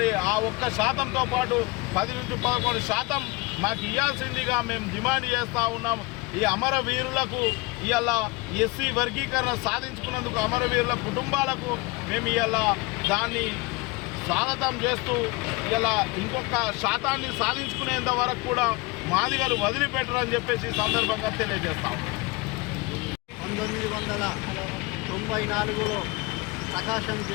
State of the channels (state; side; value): quieter; right; 24.2 dB